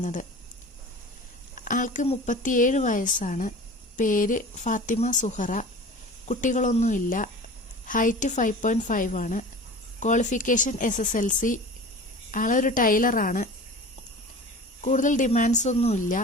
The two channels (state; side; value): normal; both; correlation 0.38